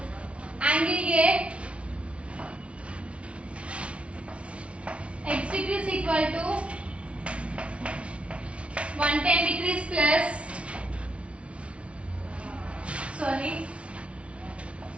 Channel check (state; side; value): late; left; 0.061 ms